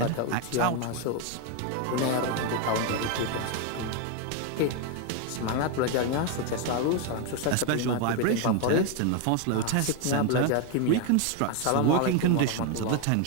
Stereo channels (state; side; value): different; both; correlation 0.01